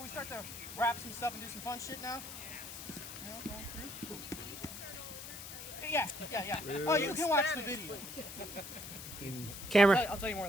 we start to wrap some stuff and do some fun shit now? Going through? Yeah. Oh, you can watch the video. Camera. I'll tell you more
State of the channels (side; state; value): left; noise; hiss, 10 dB below the sound